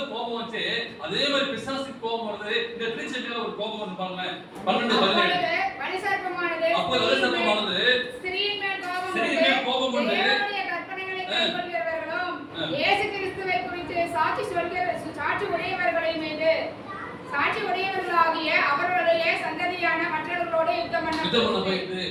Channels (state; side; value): identical; both; correlation 1.00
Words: கோபம் வச்சு, அதே மாதிரி பிசாசுக்கு கோபம் வருது. இந்த திருச்சபையில ஒரு கோபம் வந்து பாருங்க. 12:17 அப்போ வலுசர்ப்பமானது ஸ்திரீயின் மேல் கோபம் கொண்டு தேவனுடைய கற்பனைகளை கைக்கொள்கிறவர்களும் இயேசு கிறிஸ்துவை குறித்து சாட்சி உடையவர்களை மீது சாட்சி உடையவர்களாகிய அவர்களுடைய சந்ததியான மற்றவர்களோடு யுத்தம் பண்ண போயிட்டு